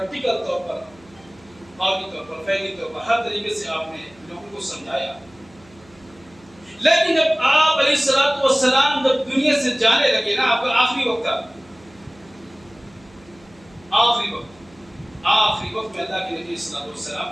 طور پر، قومی طور پر، فعلی طور پر، ہر طریقے سے آپ نے لوگوں کو سمجھایا۔ لیکن جب آپ علیہ الصلوۃ والسلام جب دنیا سے جانے لگے نا، آپ کا آخری وقت تھا، آخری وقت میں اللہ کے نبی صلی اللہ علیہ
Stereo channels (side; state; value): right; noise; hum, 27 dB below the sound